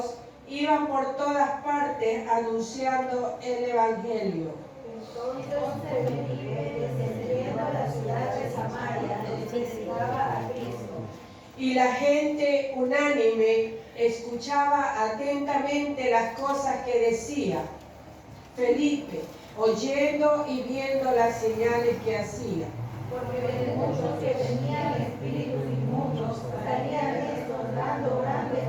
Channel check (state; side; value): identical; both; correlation 1.00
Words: iban por todas partes anunciando el Evangelio. Entonces Felipe, descendiendo a la ciudad de Samaria, predicaba a Cristo. Y la gente unánime escuchaba atentamente las cosas que decía Felipe, oyendo y viendo las señales que hacía. Porque de muchos que tenían espíritus inmundos salían estos dando